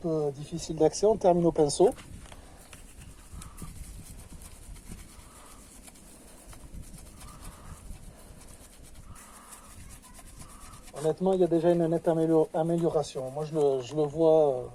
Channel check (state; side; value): identical; both; correlation 1.00